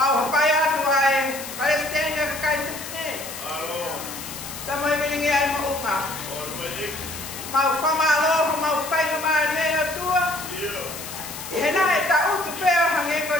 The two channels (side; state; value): left; noise; hiss, 10 dB below the sound